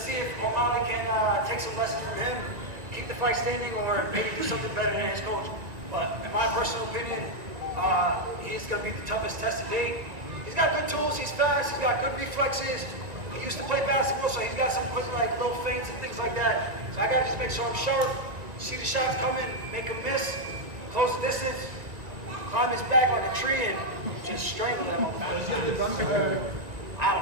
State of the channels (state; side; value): late; left; 1.9 ms